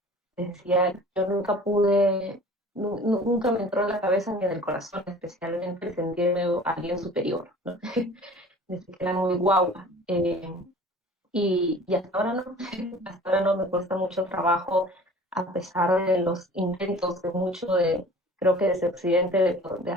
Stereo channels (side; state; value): both; normal; correlation 0.45